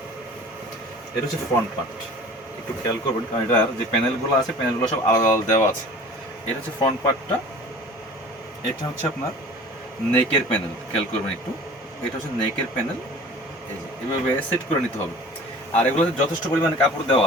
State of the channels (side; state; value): both; normal; correlation 0.43